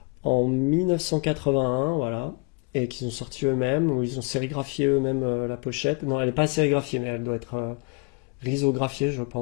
1981, voilà, et qu'ils ont sorti eux-mêmes, où ils ont sérigraphié eux-mêmes la pochette. Non, elle n'est pas sérigraphiée, mais elle doit être risographiée, je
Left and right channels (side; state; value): right; quieter; 29.7 dB